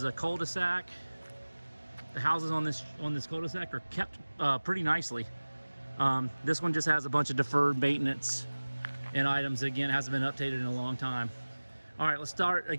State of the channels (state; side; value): inverted; both; correlation -1.00